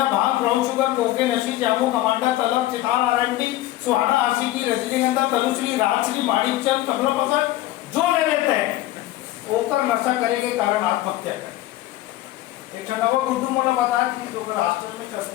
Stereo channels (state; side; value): quieter; right; 15.6 dB